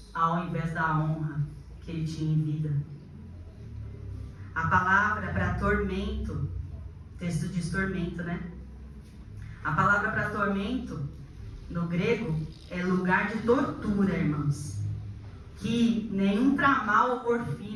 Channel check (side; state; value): both; identical; correlation 1.00